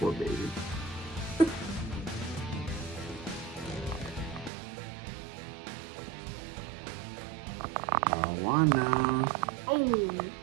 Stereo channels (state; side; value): drops out; left; at 4.5 s